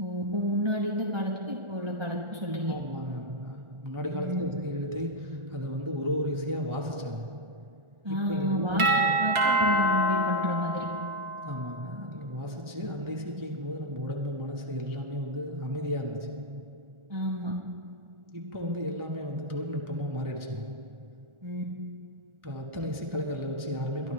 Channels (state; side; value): late; left; 1.4 ms